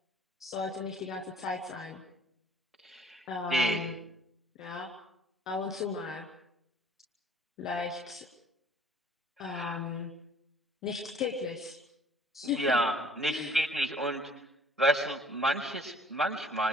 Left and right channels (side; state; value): both; normal; correlation 0.55